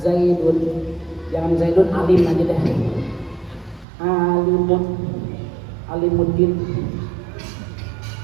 Zaidun, jangan Zaidun alim aja deh. Alimuddin.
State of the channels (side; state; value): left; drops out; at 3.9 s